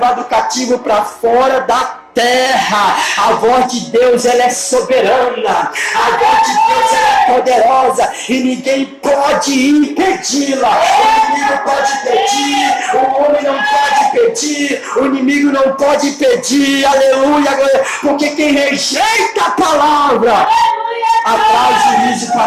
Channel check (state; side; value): identical; both; correlation 1.00